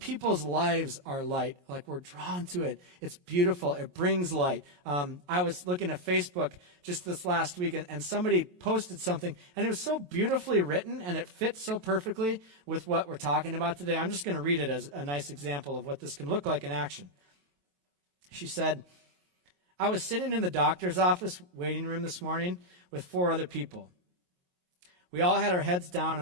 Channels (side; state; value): left; late; 22 ms